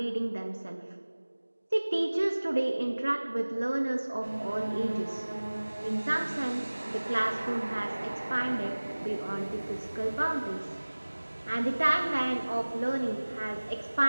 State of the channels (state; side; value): inverted; both; correlation -1.00